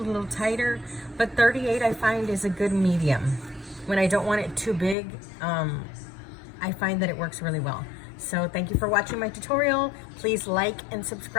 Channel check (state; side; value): drops out; right; at 5.0 s